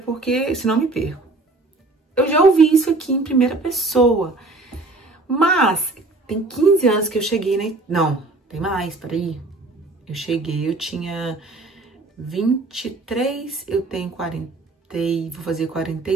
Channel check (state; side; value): quieter; left; 3.2 dB